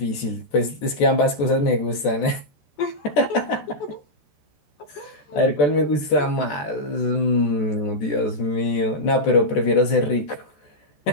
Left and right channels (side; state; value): right; late; 14 ms